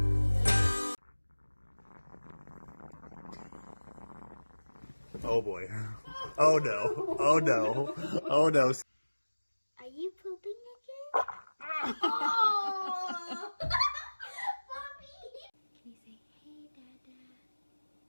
Oh boy. Oh no. Oh no. Oh no. Are you pooping again? Oh! Mommy! Can you say, hey, Dada?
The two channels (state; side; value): inverted; both; correlation -1.00